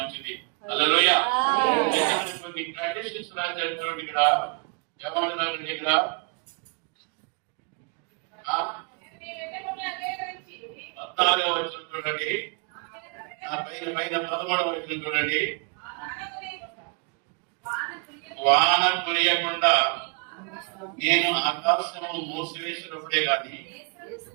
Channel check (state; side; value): quieter; left; 37.1 dB